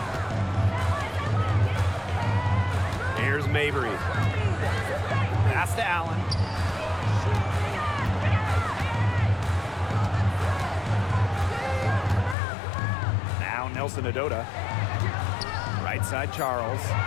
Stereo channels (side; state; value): right; drops out; at 12.4 s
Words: Here's Mabry. Pass to Allen. Now Nelson Adota. Right side Charles.